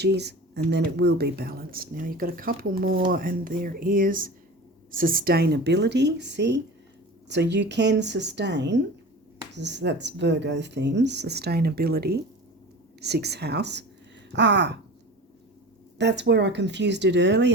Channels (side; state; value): both; normal; correlation 0.35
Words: and then it will be balanced. Now you've got a couple more and there is sustainability, see? So you can sustain, that's Virgo themes, sustainability, 6th house. That's where I confused it